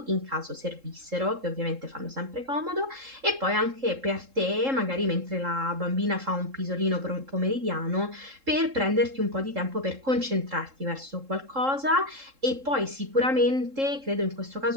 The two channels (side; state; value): left; late; 3.7 ms